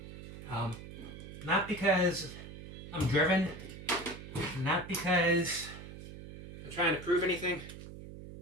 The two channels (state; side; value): noise; right; hum, 12 dB below the sound